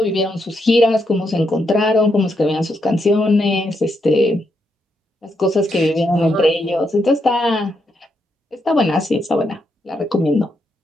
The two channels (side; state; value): both; normal; correlation 0.80